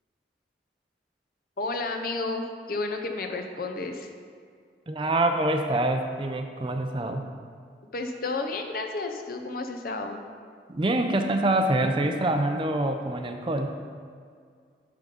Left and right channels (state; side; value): normal; both; correlation 0.42